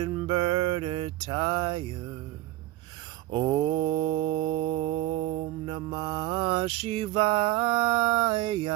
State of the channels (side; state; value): left; quieter; 16.9 dB